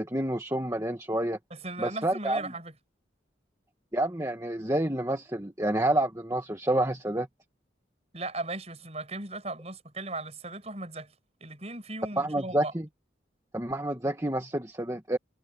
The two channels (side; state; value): both; normal; correlation 0.68